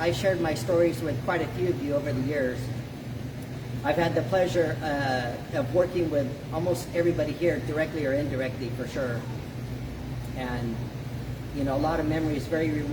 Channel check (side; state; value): both; identical; correlation 1.00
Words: shared my stories with quite a few of you over the years. I've had the pleasure of working with almost everybody here, directly or indirectly, for sure. And, you know, a lot of memories, very